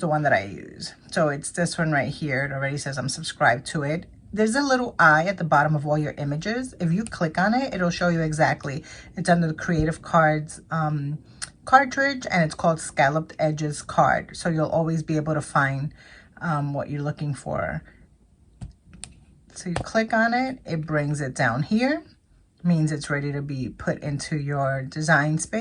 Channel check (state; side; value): identical; both; correlation 1.00